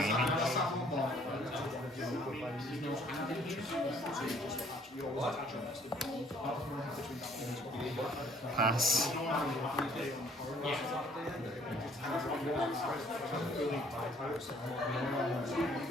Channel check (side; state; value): both; normal; correlation 0.60